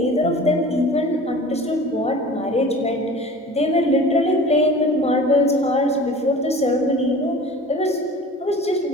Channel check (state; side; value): normal; both; correlation 0.41